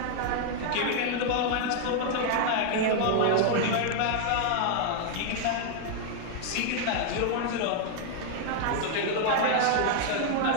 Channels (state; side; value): different; both; correlation 0.00